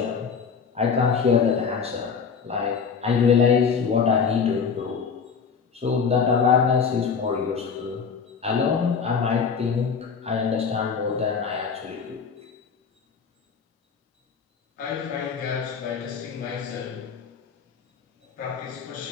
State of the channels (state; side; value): quieter; right; 6.1 dB